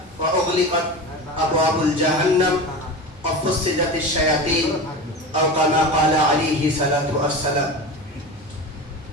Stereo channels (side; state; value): both; normal; correlation 0.28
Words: وأغلقت أبواب الجهنم وفصلت الشياطين أو كما قال عليه الصلاة والسلام.